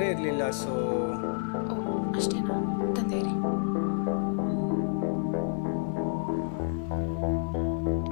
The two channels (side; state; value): right; silent; digital silence